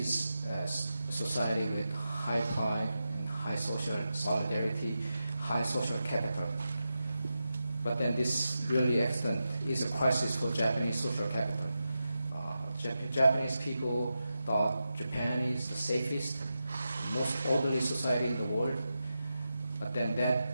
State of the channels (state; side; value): inverted; both; correlation -0.89